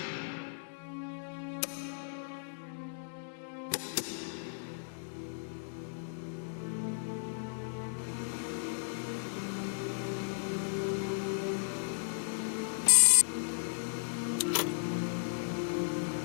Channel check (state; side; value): silent; right; digital silence